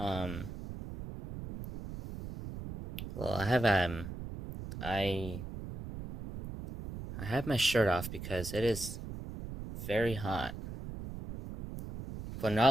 I have my shirt off because it is very hot. But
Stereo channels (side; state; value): right; noise; rumble, 9 dB below the sound